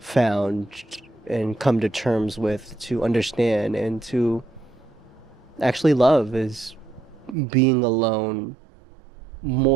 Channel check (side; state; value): left; drops out; at 7.4 s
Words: and come to terms with to understand and to actually love is being alone